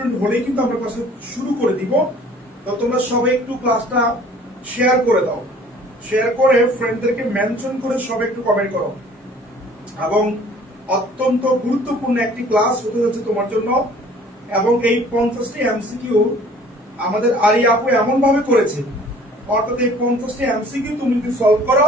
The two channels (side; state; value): both; normal; correlation 0.52